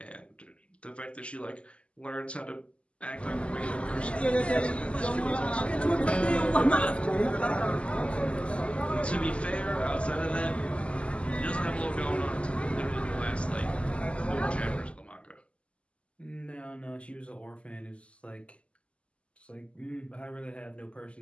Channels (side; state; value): right; late; 0.057 ms